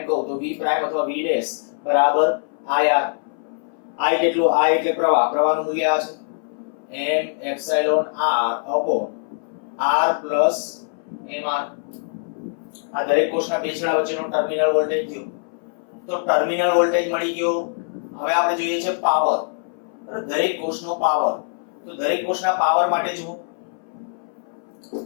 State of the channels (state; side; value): silent; right; 61 dB below the other